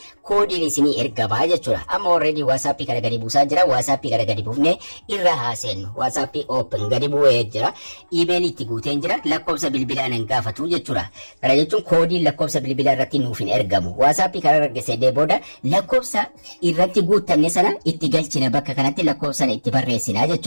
koodiin isinii ergamaa jechuudha. Amma already WhatsAppii kana gadi buusaa jira. WhatsAppii kana gadi buufnee irra haaseennu. WhatsAppii open gadi bu'ee jira. Iimeelii itti guuteen jira. Lakkoofsa bilbilaa nan gaafatu jechuudha. Kana jechuun koodiin lakkoofsa bilbilaa irratti nuuf hin ergamu. WhatsAppii kana argisiisee booda lakkoofsa irratti guuttanne sana itti galchina bakka kanatti lakkoofsa sana itti barreessina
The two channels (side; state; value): both; inverted; correlation -1.00